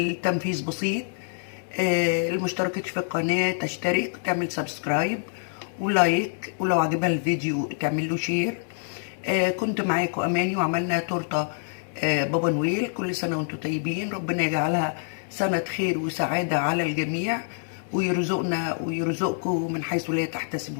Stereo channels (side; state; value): right; silent; digital silence